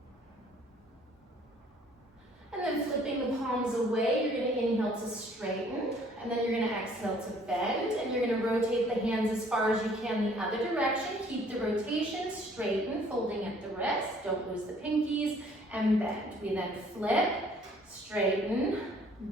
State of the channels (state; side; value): normal; both; correlation 0.59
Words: away, you're going to inhale to straighten, and then you're going to exhale to bend, and you're going to rotate the hands as far as you can the other direction. Keep the rotation, straighten, folding at the wrist, don't lose the pinkies, and bend. We then flip, straighten,